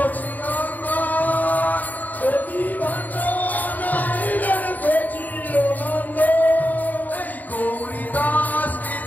নদী বন্ডনাইলেন সচিনন্দন এই গৌরীদাস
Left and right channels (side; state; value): right; late; 0.082 ms